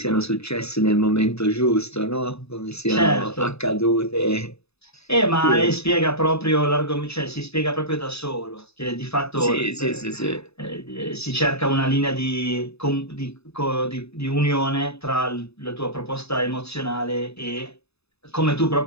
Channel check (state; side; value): late; right; 0.79 ms